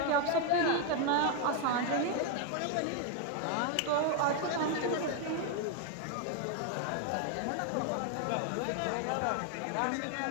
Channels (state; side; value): different; both; correlation 0.00